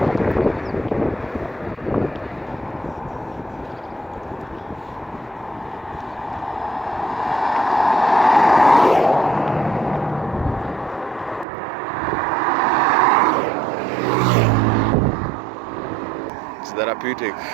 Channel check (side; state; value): left; drops out; at 11.5 s